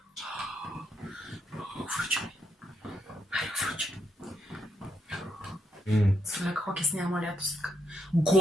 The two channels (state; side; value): normal; both; correlation 0.79